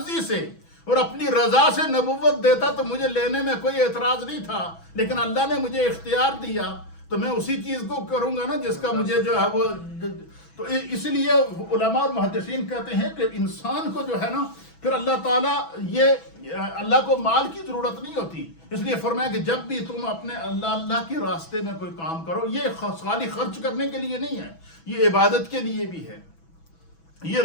سے اور اپنی رضا سے نبوت دیتا تو مجھے لینے میں کوئی اعتراض نہیں تھا, لیکن اللہ نے مجھے اختیار دیا تو میں اسی چیز کو کروں گا نا جس کا مجھے جو ہے وہ. تو اس لیے علماء اور محدثین کہتے ہیں کہ انسان کو جو ہے نا پھر اللہ تعالیٰ, یہ اللہ کو مال کی ضرورت نہیں ہوتی, اس لیے فرمایا کہ جب بھی تم اپنے اللہ کے راستے میں کوئی کام کرو, یہ خالی خرچ کرنے کے لیے نہیں ہے, یہ عبادت کے لیے بھی ہے, یہ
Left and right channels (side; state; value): right; late; 6.1 ms